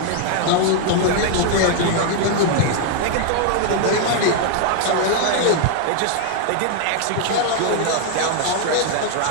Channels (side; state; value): both; different; correlation 0.00